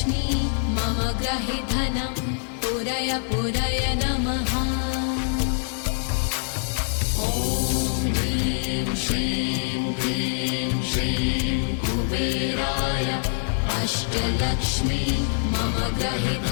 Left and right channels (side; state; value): right; silent; digital silence